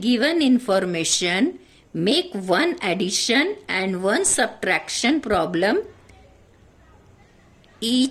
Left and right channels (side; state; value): both; identical; correlation 1.00